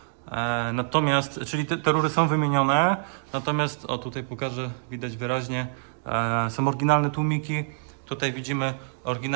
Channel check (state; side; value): silent; left; digital silence